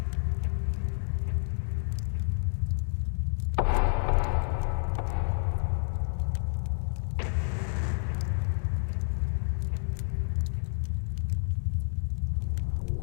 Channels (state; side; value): silent; right; 58 dB below the other